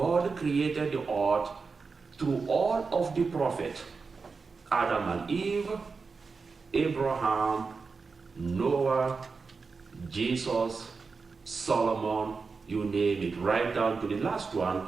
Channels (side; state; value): left; quieter; 4.7 dB